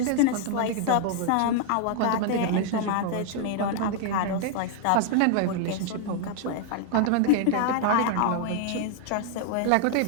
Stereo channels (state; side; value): different; both; correlation 0.00